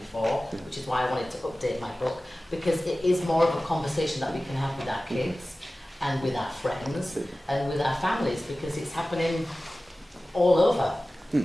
which is why I wanted to update my book, because it is more of a conversation that we can have with our kids and with our friends and with our families, because it's happening all over.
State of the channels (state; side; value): normal; both; correlation 0.96